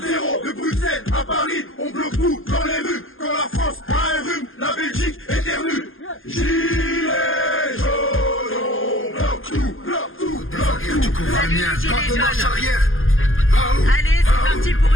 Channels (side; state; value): right; late; 0.59 ms